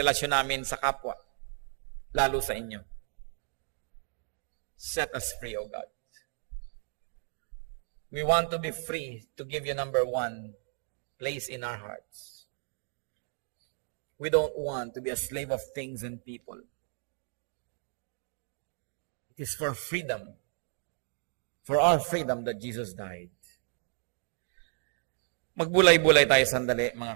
namin sa kapwa, lalo sa inyo. Set us free, O God. We want to be free to give you number one place in our hearts. We don't want to be a slave of things and people. It is for freedom, for our freedom that Jesus died. Magbulay-bulay tayo sandali,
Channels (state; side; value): silent; left; 56 dB below the other